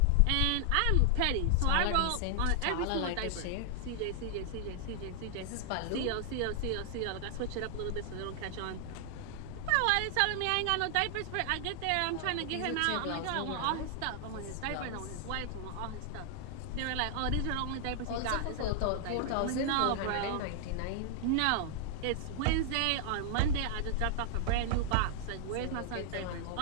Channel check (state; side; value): different; both; correlation -0.01